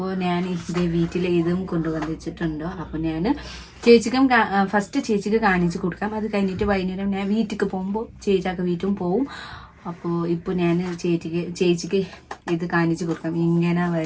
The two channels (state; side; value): identical; both; correlation 1.00